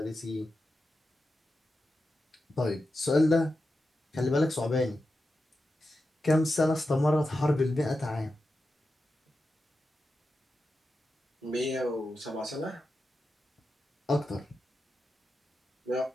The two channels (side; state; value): both; normal; correlation 0.90